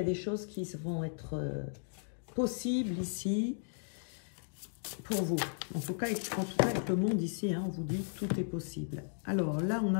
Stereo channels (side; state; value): right; silent; digital silence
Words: des choses qui vont être possibles ici pour vous. En tout cas, avec le monde ici, hein, on vous dit tout est possible. Alors là, on